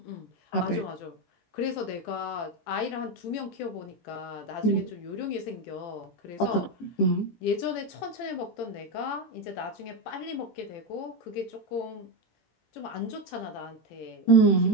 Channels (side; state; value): right; late; 17 ms